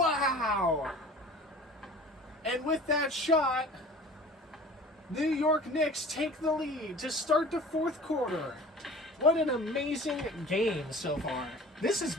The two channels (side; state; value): both; normal; correlation 0.42